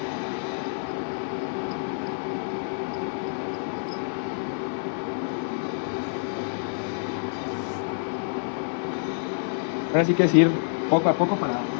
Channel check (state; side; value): silent; right; digital silence